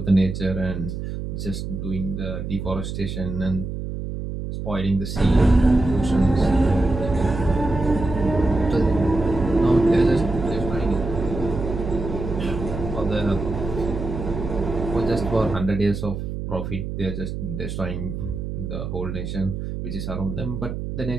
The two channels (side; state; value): right; noise; hum, 5 dB below the sound